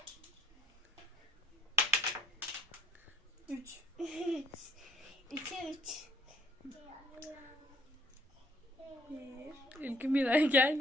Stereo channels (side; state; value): both; normal; correlation 0.61